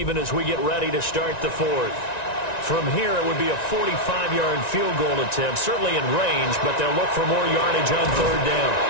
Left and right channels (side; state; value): right; late; 1.9 ms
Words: as we get ready to start the 4th. From here, it would be a 45-yard field goal attempt, certainly in range, but they'll look for more yardage on 3rd down.